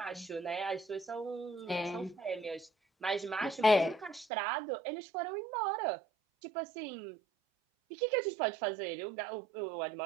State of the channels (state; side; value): drops out; left; at 4.2 s